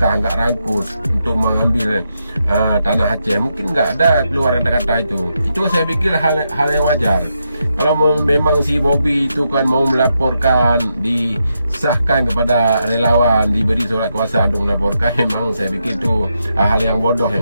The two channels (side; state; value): both; inverted; correlation -0.83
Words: nggak rangkus untuk mengambil tanah Aceh, mungkin nggak ada keluar kata-kata itu. Itu saya pikir hal yang wajar. Kalau memang si Bobby itu kan mau melaporkan, disahkan kepada relawan, diberi surat kuasa untuk melaporkan, memang saya pikir itu hal yang bodoh